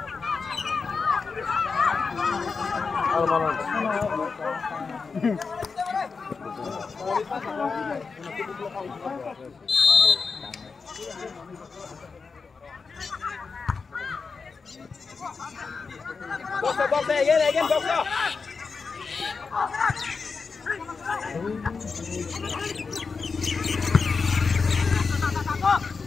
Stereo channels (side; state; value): right; quieter; 4.9 dB